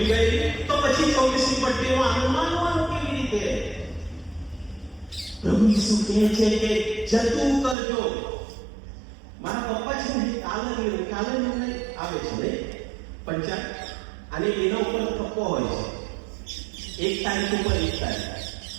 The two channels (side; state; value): left; drops out; at 7.8 s